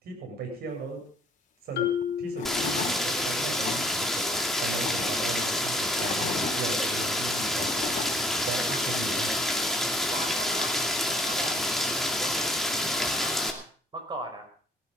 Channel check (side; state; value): both; normal; correlation 0.61